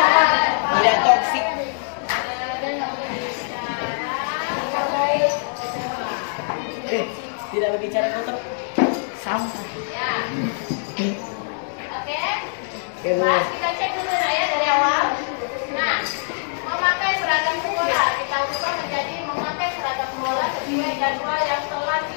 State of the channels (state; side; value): silent; right; digital silence